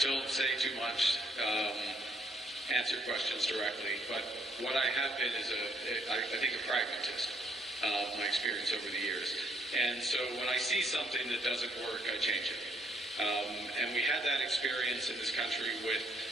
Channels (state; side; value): normal; both; correlation 0.68